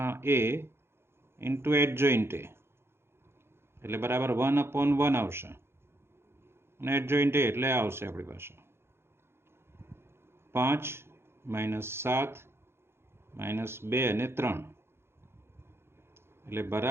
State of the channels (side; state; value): left; late; 0.12 ms